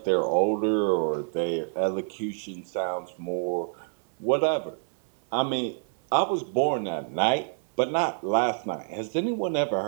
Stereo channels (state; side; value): silent; left; 60 dB below the other